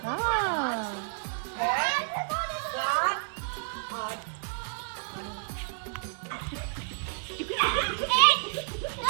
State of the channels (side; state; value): left; silent; digital silence